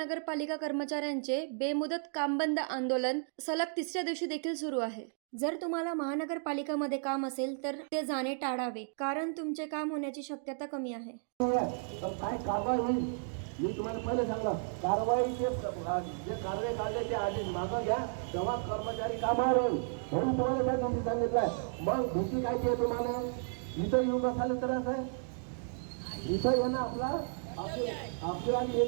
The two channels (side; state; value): left; silent; digital silence